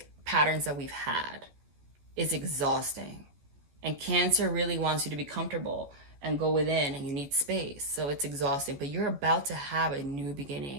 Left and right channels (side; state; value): left; late; 14 ms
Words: patterns that we've had is exhausting. And Cancer really wants you to be comfortable and go within, and you need space. So it's exhausting, but you're about to have a new